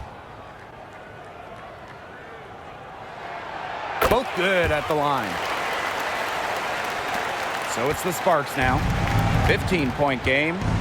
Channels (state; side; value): identical; both; correlation 1.00